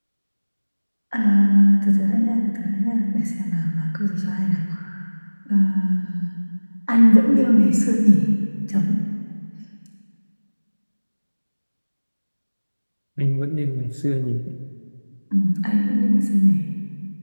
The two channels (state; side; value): inverted; both; correlation -1.00